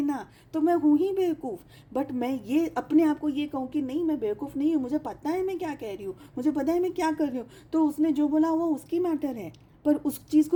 तो मैं हूँ ही बेवकूफ़। बट मैं ये अपने आप को ये कहूँ कि नहीं, मैं बेवकूफ़ नहीं हूँ, मुझे पता है मैं क्या कह रही हूँ, मुझे पता है मैं क्या कर रही हूँ, तो उसने जो बोला वो उसकी मैटर है। पर उस चीज़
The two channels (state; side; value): identical; both; correlation 1.00